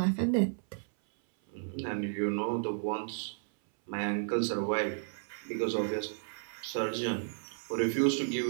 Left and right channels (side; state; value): left; silent; 56 dB below the other